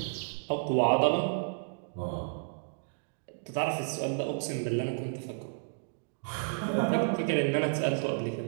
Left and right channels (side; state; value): left; silent; digital silence